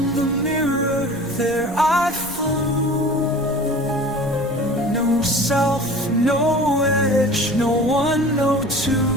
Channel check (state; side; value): noise; left; rumble, 22 dB below the sound